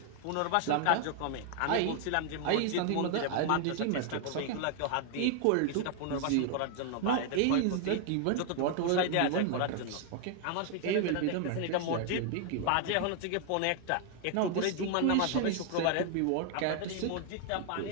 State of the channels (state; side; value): different; both; correlation 0.00